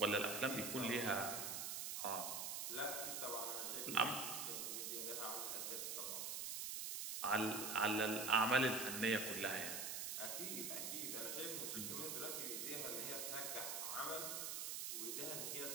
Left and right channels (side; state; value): right; noise; hiss, 2 dB below the sound